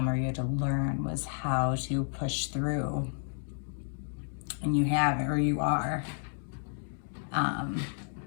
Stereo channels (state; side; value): silent; right; digital silence